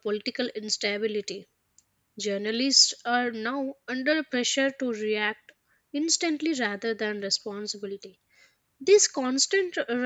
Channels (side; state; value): both; identical; correlation 1.00